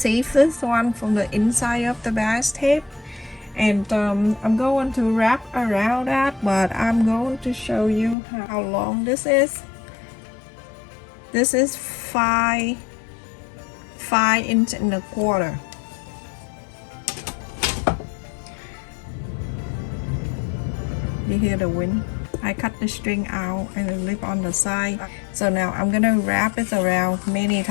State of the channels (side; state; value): right; drops out; at 8.2 s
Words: this one from the inside of the bias tape, and I'm going to wrap around that, but I'm going to show you how long this is. This is 5 inches and a quarter. You hear the wind? I cut the string out and the lip on the side. So now I'm gonna wrap it around many